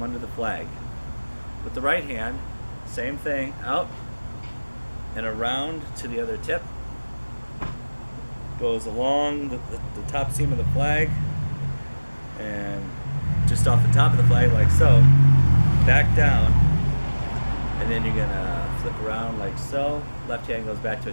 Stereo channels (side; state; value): both; inverted; correlation -1.00